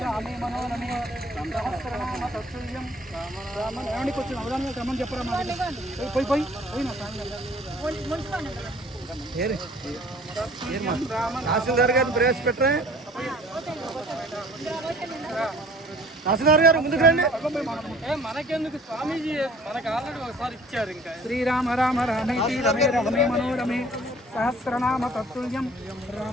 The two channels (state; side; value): normal; both; correlation 0.52